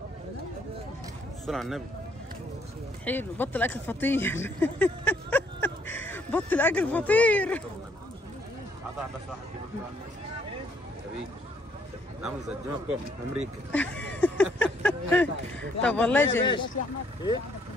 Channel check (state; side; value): normal; both; correlation 0.67